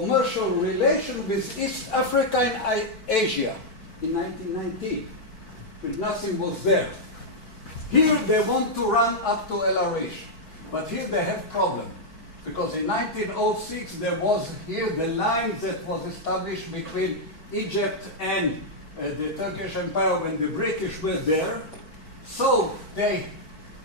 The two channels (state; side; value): late; right; 4.5 ms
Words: relations with East Africa and Asia in 1919, when nothing was there. Here they want to run up to El Arish, but here they have problem, because in 1906 there was here the line that was established between Egypt and the Turkish Empire when the British were there. So they